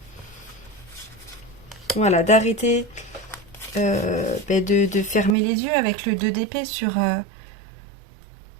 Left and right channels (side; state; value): left; drops out; at 5.4 s